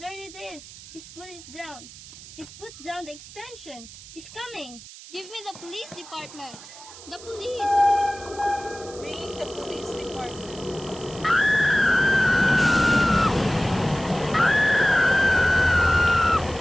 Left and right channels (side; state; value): right; noise; hiss, 17 dB below the sound